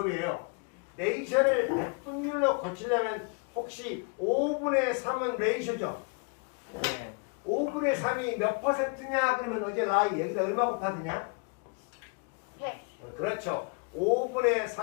레이셔를 백분율로 고치려면 혹시 5분의 3은 레이셔죠? 네. 5분의 3이 몇 퍼센트냐? 그러면 어제 라이 여기다 얼마 곱하느냐? 100. 그렇죠. 5분의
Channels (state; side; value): quieter; right; 35.7 dB